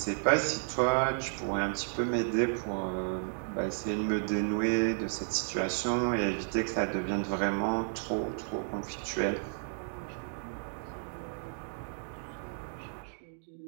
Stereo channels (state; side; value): silent; left; digital silence